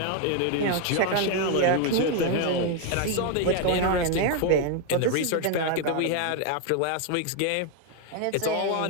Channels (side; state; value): both; different; correlation 0.01